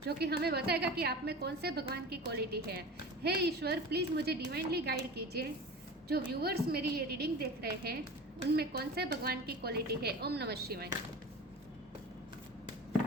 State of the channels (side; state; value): both; normal; correlation 0.34